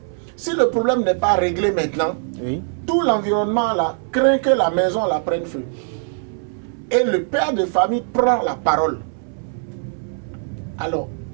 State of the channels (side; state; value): left; silent; 65 dB below the other